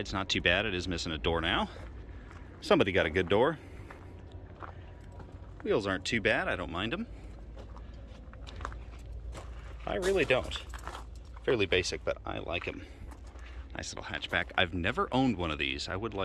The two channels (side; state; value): both; identical; correlation 1.00